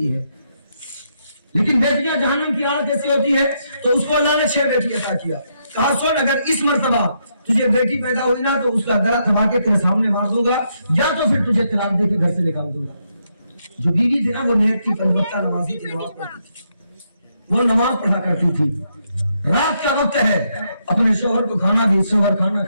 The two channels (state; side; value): inverted; both; correlation -0.78